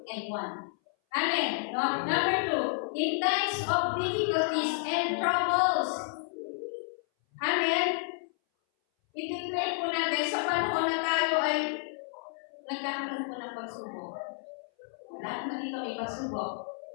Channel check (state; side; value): silent; right; 57 dB below the other